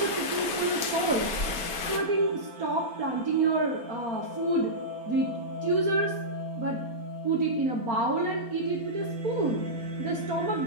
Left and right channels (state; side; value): late; left; 4.3 ms